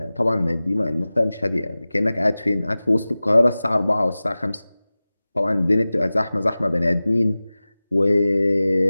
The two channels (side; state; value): both; inverted; correlation -0.97